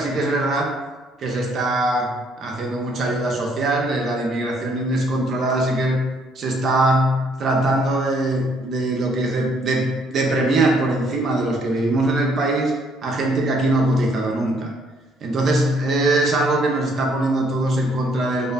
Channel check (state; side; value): normal; both; correlation 0.67